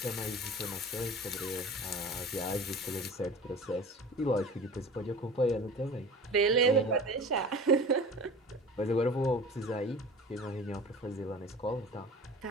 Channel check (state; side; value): normal; both; correlation 0.39